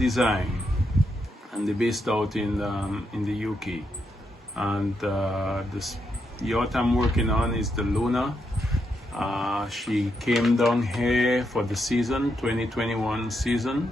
and they're based out in the UK. And this yacht I'm working on is the Luna. She came down here for the season 2021 season.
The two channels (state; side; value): normal; both; correlation 0.81